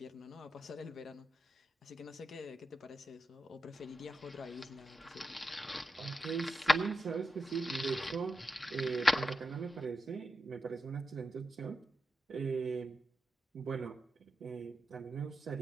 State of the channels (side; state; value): both; normal; correlation 0.88